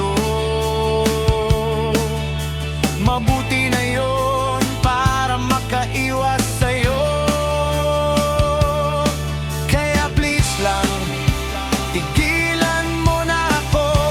mabuti na yon para makaiwas sa'yo. Kaya please lang, tigilan mo na ako.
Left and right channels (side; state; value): both; identical; correlation 1.00